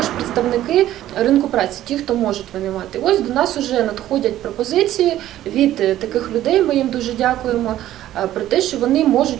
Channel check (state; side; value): quieter; left; 13.3 dB